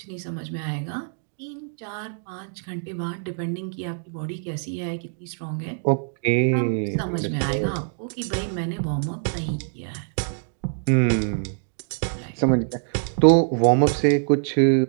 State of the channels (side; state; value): left; silent; 62 dB below the other